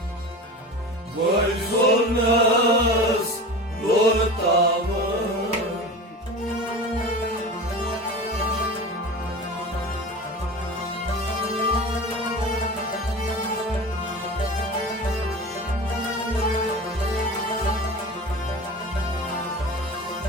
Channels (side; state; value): both; normal; correlation 0.32